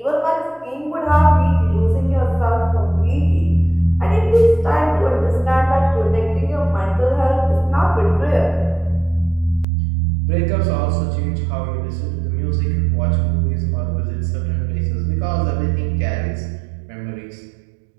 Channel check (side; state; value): left; drops out; at 9.7 s